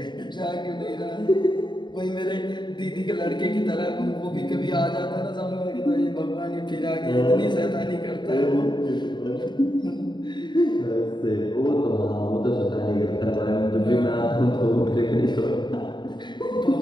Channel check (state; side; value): late; right; 0.22 ms